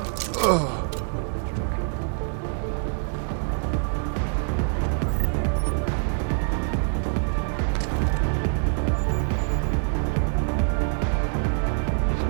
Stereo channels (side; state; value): left; silent; 57 dB below the other